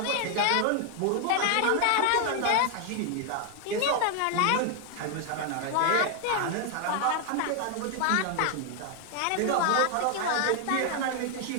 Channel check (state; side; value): different; both; correlation 0.00